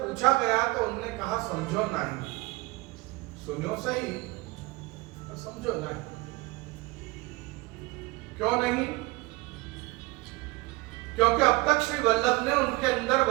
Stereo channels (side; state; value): left; quieter; 22.6 dB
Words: गया तो उन्होंने कहा समझो नहीं, सुनो सही पर समझो नहीं। क्यों नहीं? क्योंकि अब तक श्री वल्लभ ने उनके अंदर